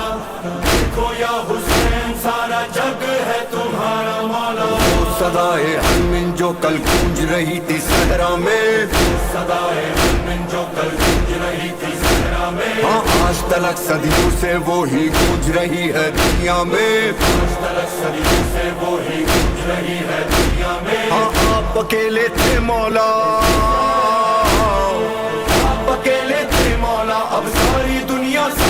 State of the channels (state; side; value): identical; both; correlation 1.00